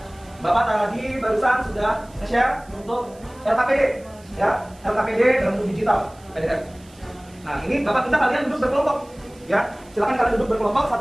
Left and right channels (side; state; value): right; noise; hiss, 27 dB below the sound